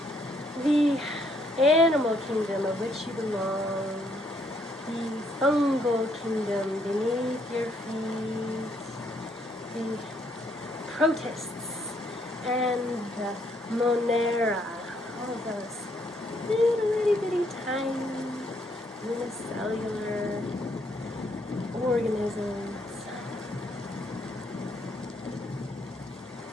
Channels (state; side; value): normal; both; correlation 0.70